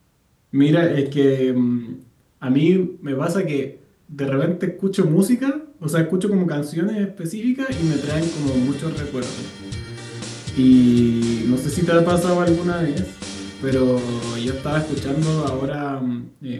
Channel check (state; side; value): identical; both; correlation 1.00